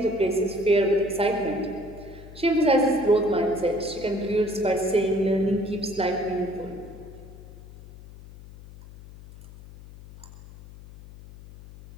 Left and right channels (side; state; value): left; noise; hum, 18 dB below the sound